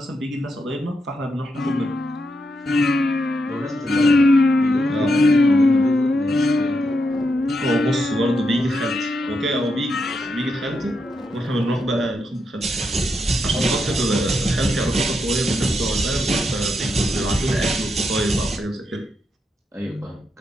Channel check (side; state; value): both; normal; correlation 0.83